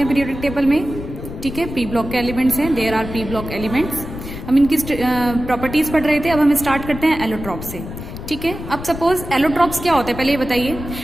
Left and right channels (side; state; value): left; noise; rumble, 10 dB below the sound